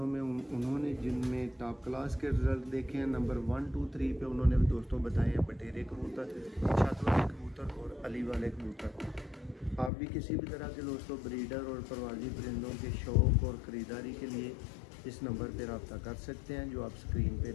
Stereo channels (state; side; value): drops out; right; at 9.9 s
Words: में उन्होंने जिनमें टॉप क्लास के रिज़ल्ट देखे हैं, नंबर 1, 2, 3 पे उन्होंने दोस्तों बताए हैं बटेरे कबूतर, छत वाले कबूतर और अली वाले कबूतर। आप भी किसी भी तरह के दोस्तों ब्रीडर और परवाजी परिंदों के शौक़ और ख़रीदारी के लिए इस नंबर पर रब्ता कर सकते हैं जो आप स्क्रीन पे